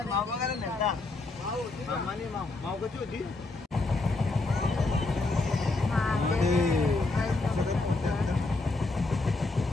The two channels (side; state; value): right; quieter; 3.3 dB